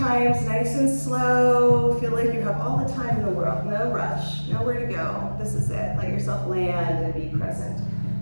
nice and slow. Feel like you have all the time in the world. No rush, nowhere to go. This is it. Let yourself land and be present.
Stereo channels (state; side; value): inverted; both; correlation -1.00